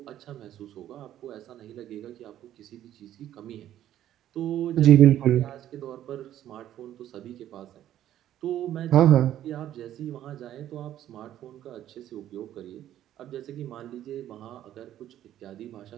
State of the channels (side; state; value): left; quieter; 12.0 dB